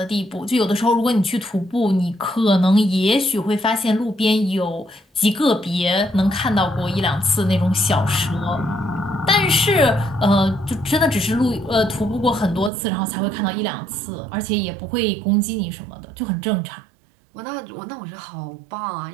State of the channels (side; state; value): left; drops out; at 12.7 s